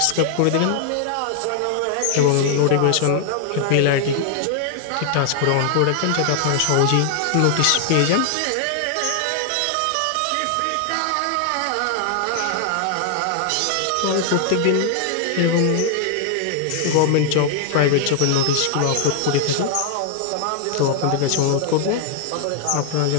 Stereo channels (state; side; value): different; both; correlation 0.00